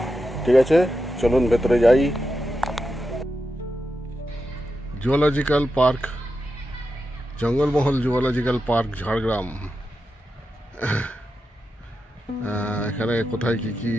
ঠিক আছে, চলুন ভেতরে যাই। Zoological park, Jangalmahal zoological park Jhargram. এখানে কোথায় কি কি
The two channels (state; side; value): normal; both; correlation 0.89